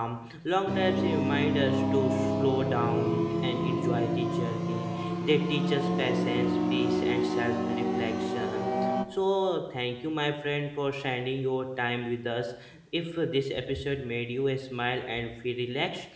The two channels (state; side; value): identical; both; correlation 1.00